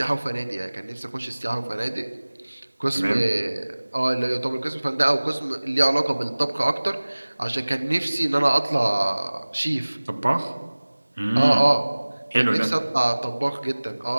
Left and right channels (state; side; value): inverted; both; correlation -1.00